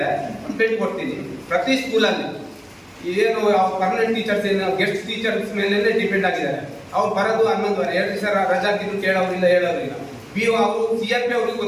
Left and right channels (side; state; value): both; identical; correlation 1.00